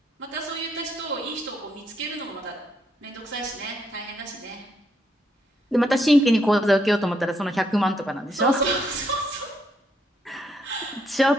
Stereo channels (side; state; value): both; normal; correlation 0.75